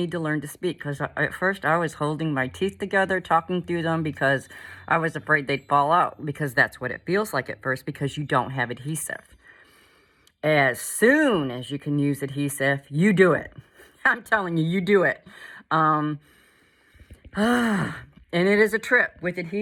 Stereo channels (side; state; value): both; identical; correlation 1.00